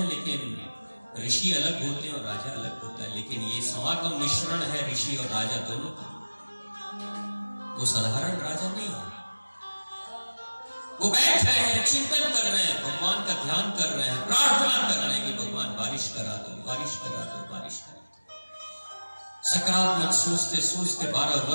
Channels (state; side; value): inverted; both; correlation -1.00